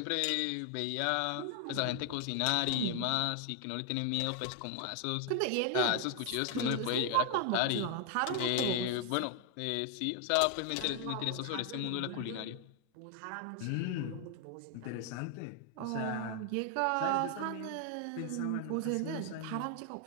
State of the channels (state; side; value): different; both; correlation 0.00